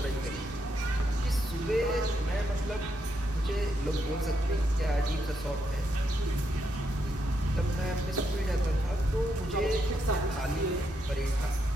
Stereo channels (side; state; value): both; normal; correlation 0.80